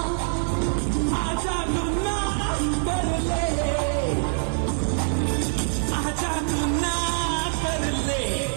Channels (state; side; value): silent; left; digital silence